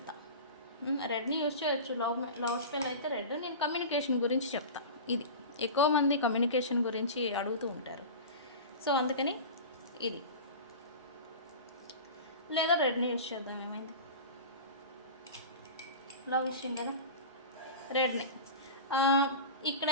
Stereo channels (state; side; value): inverted; both; correlation -0.31